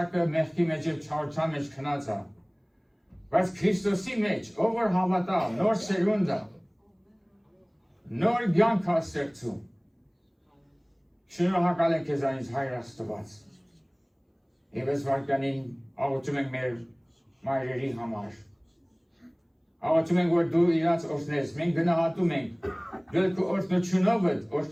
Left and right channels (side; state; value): both; identical; correlation 1.00